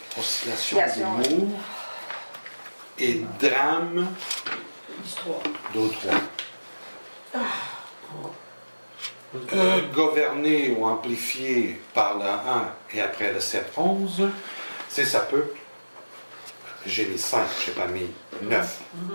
d'humour et drames du 3. d'autres. Gouverné ou amplifié par le 1 et après le 7-11, c'est ça peut. J'ai mis 5, je n'ai pas mis 9.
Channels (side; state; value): both; inverted; correlation -1.00